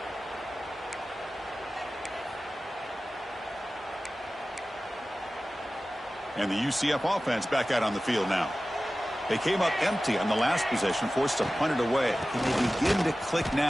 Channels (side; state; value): both; normal; correlation 0.96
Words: And the UCF offense back out on the field now. They came up empty on the last possession, forced to punt it away. And they begin to click